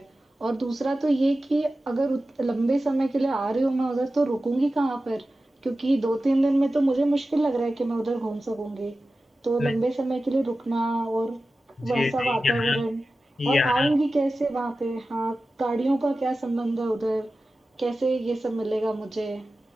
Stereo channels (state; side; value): normal; both; correlation 0.94